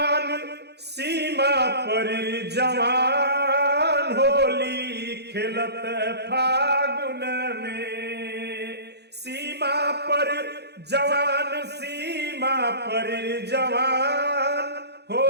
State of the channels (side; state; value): left; late; 0.48 ms